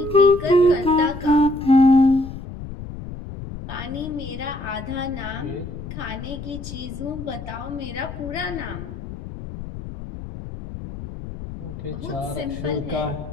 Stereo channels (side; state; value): left; noise; rumble, 10 dB below the sound